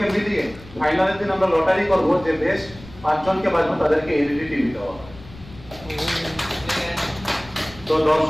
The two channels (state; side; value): noise; left; rumble, 19 dB below the sound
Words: মিলিয়ে ফাইনালের দিন আমরা লটারি করবো যে বেশ 5 জনকে বাঁচবো তাদেরকে এলইডি টিভি দেওয়া হবে। তো